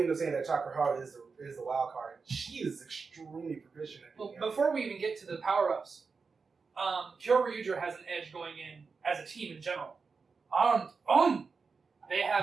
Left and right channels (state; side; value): quieter; left; 4.9 dB